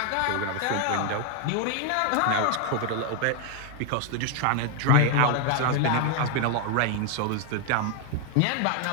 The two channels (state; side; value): different; both; correlation 0.01